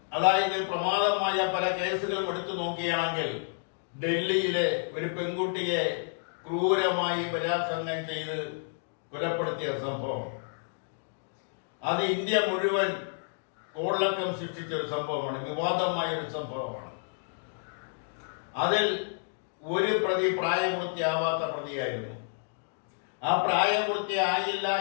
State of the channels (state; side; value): silent; right; digital silence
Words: അതായത് പ്രമാദമായ പല കേസുകളും എടുത്തു നോക്കുകയാണെങ്കിൽ ഡൽഹിയിലെ ഒരു പെൺകുട്ടിയെ ക്രൂരമായി ബലാത്സംഗം ചെയ്ത് കൊലപ്പെടുത്തിയ സംഭവം, അത് ഇന്ത്യ മുഴുവൻ കോളിളക്കം സൃഷ്ടിച്ച ഒരു സംഭവമാണ്, വിവാദമായ ഒരു സംഭവമാണ്. അതിൽ ഒരു പ്രതി പ്രായപൂർത്തിയാവാത്ത പ്രതിയായിരുന്നു. ആ പ്രായപൂർത്തിയായില്ല